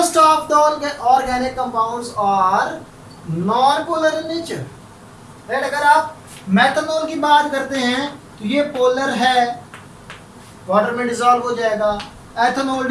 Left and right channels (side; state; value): both; identical; correlation 1.00